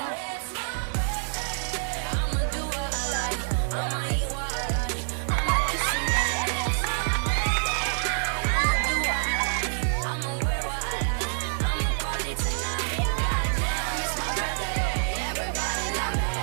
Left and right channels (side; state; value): left; silent; digital silence